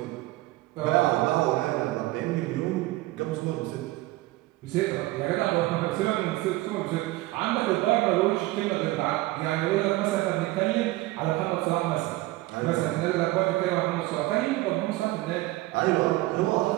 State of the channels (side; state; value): left; quieter; 18.6 dB